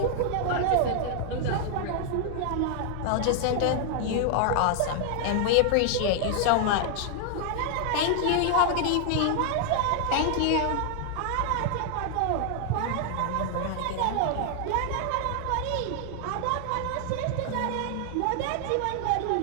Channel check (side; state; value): both; different; correlation 0.00